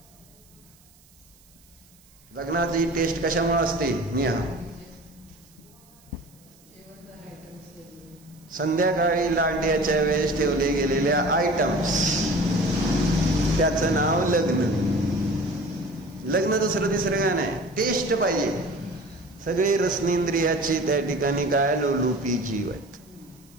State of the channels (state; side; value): noise; right; hiss, 29 dB below the sound